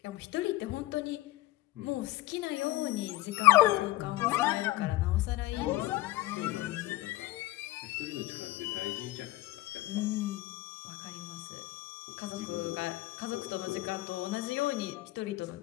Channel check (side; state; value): right; quieter; 17.9 dB